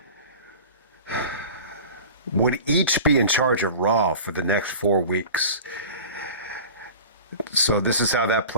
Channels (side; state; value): both; inverted; correlation -0.38